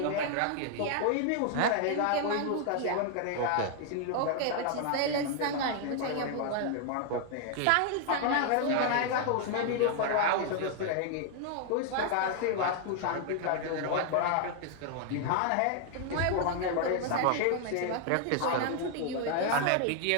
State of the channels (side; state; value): both; different; correlation 0.00